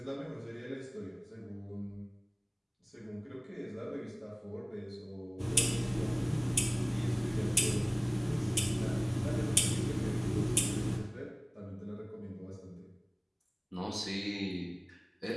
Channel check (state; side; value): identical; both; correlation 1.00